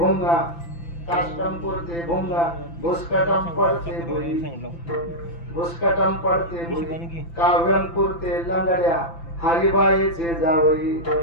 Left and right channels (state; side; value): late; right; 5.9 ms